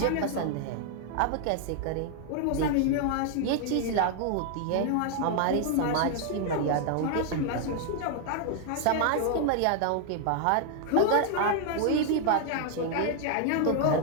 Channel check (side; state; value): both; different; correlation 0.00